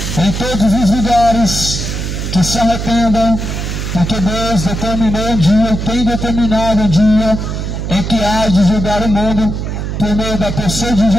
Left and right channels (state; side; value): noise; right; hum, 4 dB below the sound